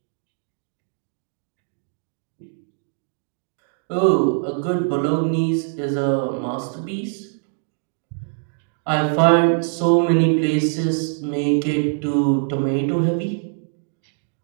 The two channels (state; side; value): silent; left; digital silence